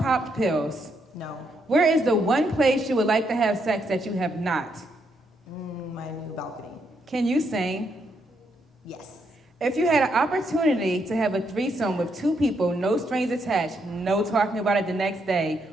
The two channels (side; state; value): both; normal; correlation 0.77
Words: pills? No. Where is the one place you would like to have sex that you have not? My new balcony. Can you sing? Yes. If you had an opportunity to have a threesome with two people, no strings attached, no talking about it the next day,